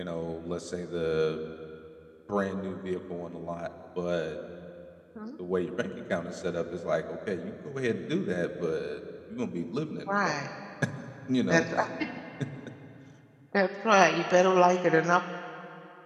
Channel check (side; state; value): both; identical; correlation 1.00